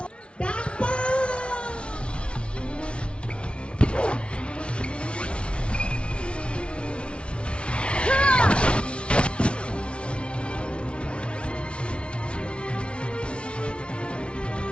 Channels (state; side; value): late; right; 0.059 ms